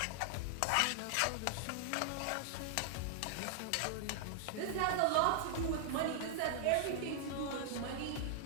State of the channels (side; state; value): both; different; correlation -0.01